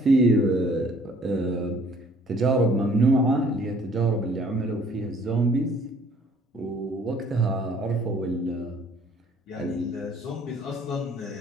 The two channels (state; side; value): normal; both; correlation 0.58